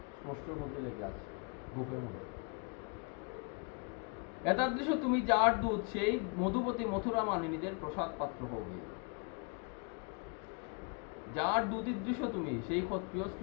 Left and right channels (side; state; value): right; quieter; 34.2 dB